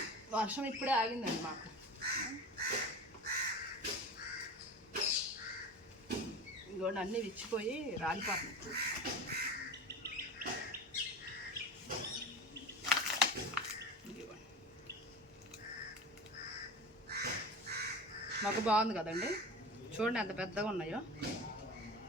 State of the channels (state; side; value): normal; both; correlation 0.32